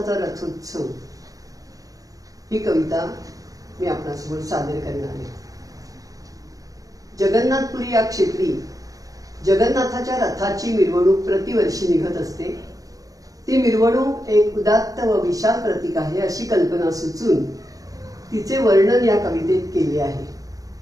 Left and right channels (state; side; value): late; left; 0.17 ms